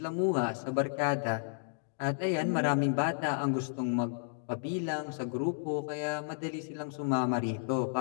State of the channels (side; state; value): right; silent; digital silence